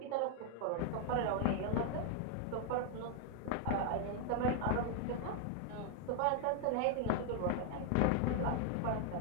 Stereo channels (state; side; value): different; both; correlation 0.00